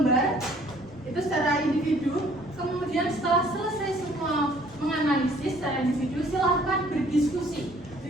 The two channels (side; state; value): both; normal; correlation 0.58